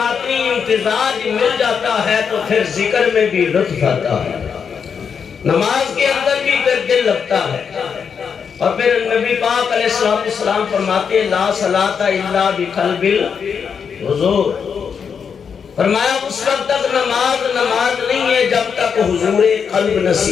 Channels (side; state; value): right; quieter; 6.6 dB